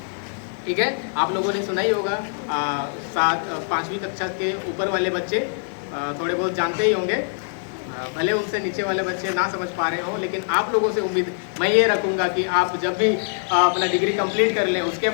ठीक है, आप लोगों ने सुना ही होगा। 5वीं कक्षा के ऊपर वाले बच्चे थोड़े बहुत जानते ही होंगे, भले उनसे नीचे वाले बच्चे ना समझ पा रहे हों, लेकिन आप लोगों से उम्मीद मैं ये रखूँगा कि आप जब भी अपना डिग्री कंप्लीट कर लें, उसके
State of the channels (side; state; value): right; silent; digital silence